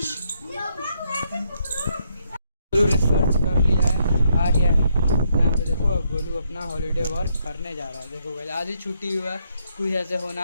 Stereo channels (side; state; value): both; inverted; correlation -0.75